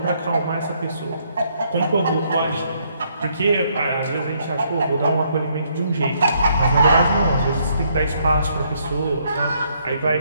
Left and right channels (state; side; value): inverted; both; correlation -0.71